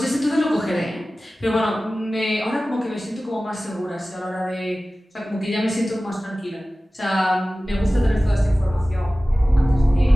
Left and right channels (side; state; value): both; normal; correlation 0.96